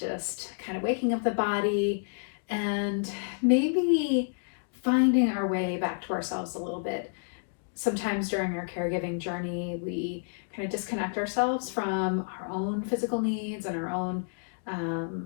kind of waking up the body and maybe finding our way back to ourselves a little bit. Sometimes during our caregiving journey, we kind of disconnect ourselves from our own physical needs and our own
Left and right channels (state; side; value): silent; right; digital silence